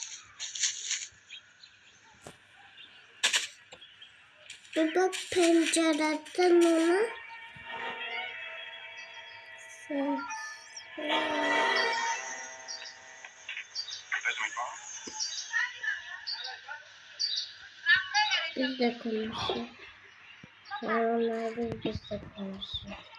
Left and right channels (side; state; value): both; identical; correlation 1.00